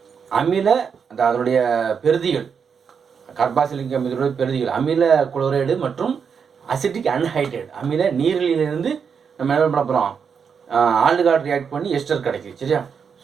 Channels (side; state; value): left; quieter; 6.5 dB